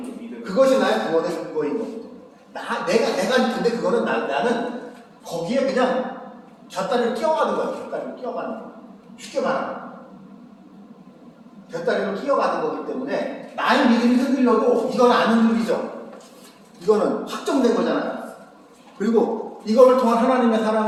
믿음. 그것이 나의 구원의 근거인 거거든요. 내가 근데 그거는 나는 거기에 그냥 곁다리를 끼어가는 거야. 곁다리를 끼어가는 거. 쉽게 말하면 곁다리를 끼어가는 거기 때문에 나의 믿음이 흔들려도 이건 안 흔들리죠. 이거는 확정된 거잖아요. 그리고 이거를 통한 하나님의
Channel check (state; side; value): identical; both; correlation 1.00